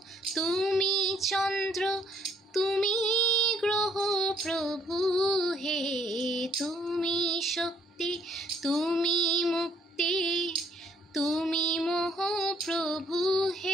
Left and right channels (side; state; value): both; normal; correlation 0.66